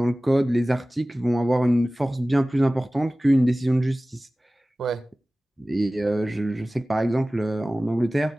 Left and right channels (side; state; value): both; normal; correlation 0.97